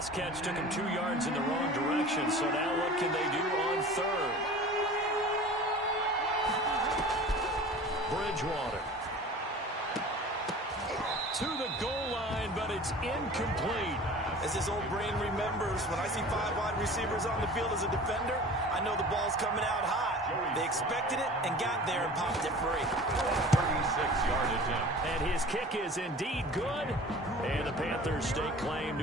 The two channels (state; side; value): normal; both; correlation 0.41